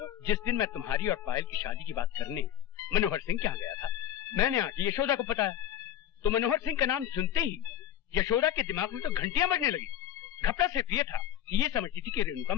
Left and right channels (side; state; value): right; quieter; 10.9 dB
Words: जिस दिन मैं तुम्हारी और पायल की शादी की बात करने मनोहर सिंह के यहाँ गया था, मैंने आके यशोदा को बताया, तो मनोहर सिंह का नाम सुनते ही यशोदा के दिमाग में तो घंटियां बजने लगी। घबरा सिर्फ ये था कि ये समझती थी कि रेणुका